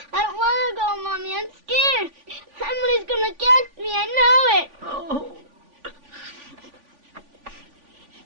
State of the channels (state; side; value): late; left; 3.5 ms